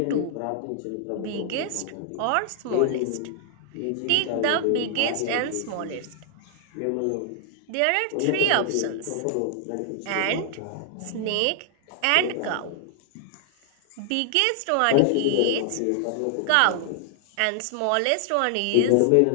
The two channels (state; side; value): different; both; correlation 0.00